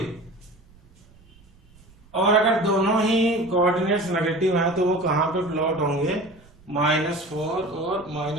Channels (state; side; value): noise; right; rumble, 28 dB below the sound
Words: और अगर दोनों ही कोऑर्डिनेट्स नेगेटिव हैं तो वो कहाँ पे प्लॉट होंगे, -4 और